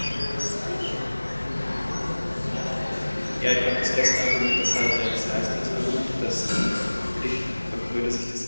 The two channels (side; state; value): both; inverted; correlation -1.00